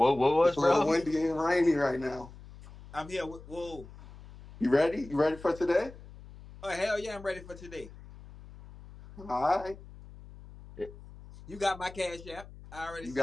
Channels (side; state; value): left; noise; hum, 18 dB below the sound